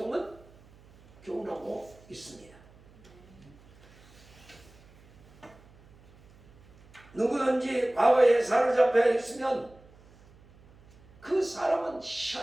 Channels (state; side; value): noise; right; hum, 26 dB below the sound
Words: 교훈하고 있습니다. 누구든지 과거에 사로잡혀 있으면 그 사람은